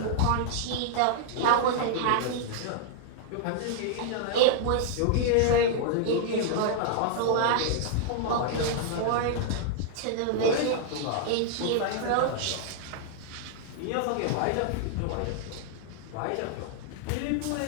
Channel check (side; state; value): both; different; correlation -0.01